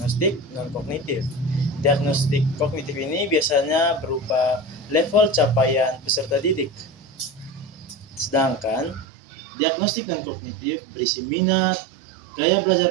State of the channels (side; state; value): left; drops out; at 9.1 s